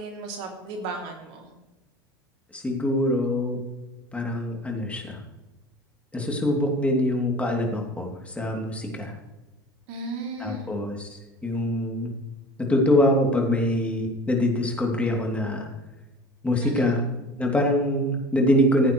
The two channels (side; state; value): both; normal; correlation 0.43